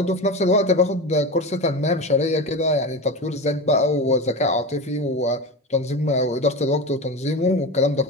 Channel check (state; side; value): normal; both; correlation 0.24